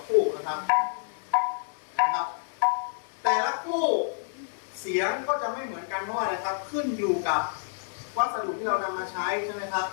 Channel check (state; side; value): silent; right; 59 dB below the other